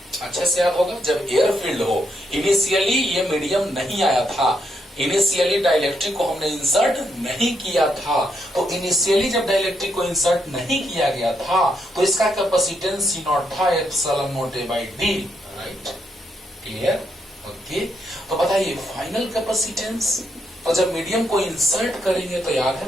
अच्छे से याद होगा, जब एयर फील्ड हो, इनिशियली ये मीडियम नहीं आया था, इनिशियली डाइलेक्ट्रिक को हमने इंसर्ट नहीं किया था, तो इनिशियली जब डाइलेक्ट्रिक को इंसर्ट नहीं किया गया था तो इसका कैपेसिटेंस सी नॉट था epsilon naught A by D, right, clear, okay. तो बताइए फाइनल कैपेसिटेंस, तो जब मीडियम को इंसर्ट करेंगे तो याद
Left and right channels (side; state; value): both; normal; correlation 0.78